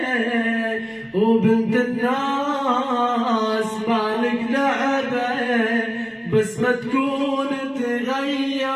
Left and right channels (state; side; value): identical; both; correlation 1.00